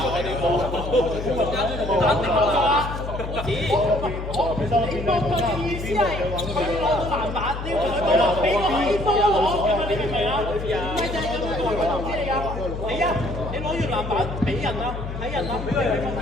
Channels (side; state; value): left; noise; hum, 7 dB below the sound